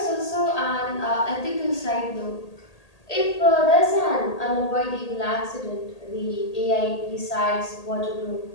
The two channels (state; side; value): late; right; 1.8 ms